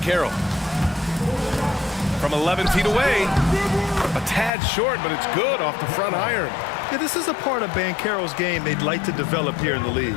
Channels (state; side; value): drops out; right; at 4.5 s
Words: From 11 feet away. A tad short, but it's good off the front iron. Yeah, this is a part of Banchero's game they'd like to develop here in the league.